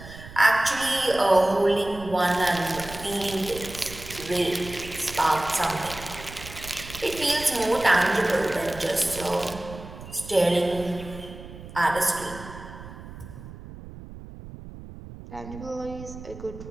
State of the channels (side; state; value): right; noise; rumble, 14 dB below the sound